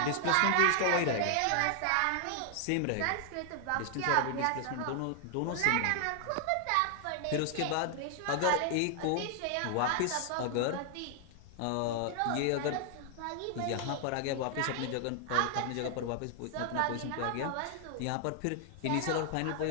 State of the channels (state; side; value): different; both; correlation 0.00